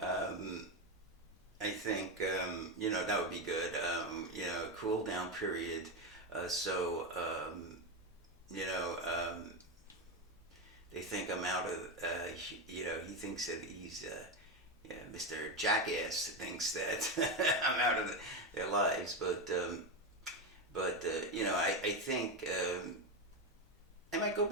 I think you know, that would be good. You know, cool down period. So you know, they think I'm out of. You know, he thinks that he's. Yeah, Mr. Jackass thinks that I'm out of their lives, but you know, I think I might go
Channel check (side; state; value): both; normal; correlation 0.12